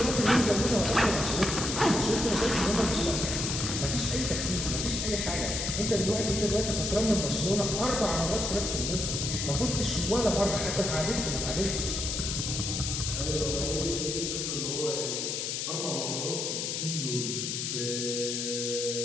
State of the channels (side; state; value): left; noise; hiss, 2 dB below the sound